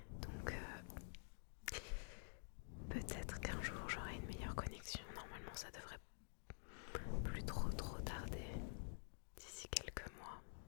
Donc peut-être qu'un jour j'aurai une meilleure connexion. Normalement, ça devrait plus trop tarder d'ici quelques mois.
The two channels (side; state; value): right; silent; digital silence